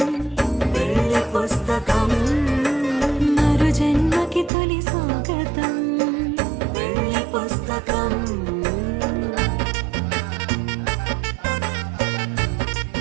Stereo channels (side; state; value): left; drops out; at 4.5 s